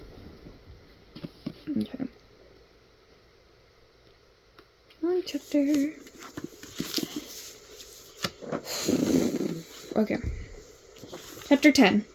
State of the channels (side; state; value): both; identical; correlation 1.00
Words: Okay. Long chapter. Okay. Chapter 10.